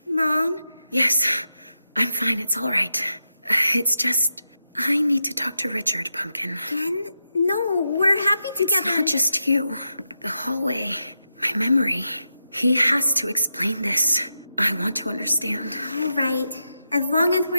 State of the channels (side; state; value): both; inverted; correlation -0.88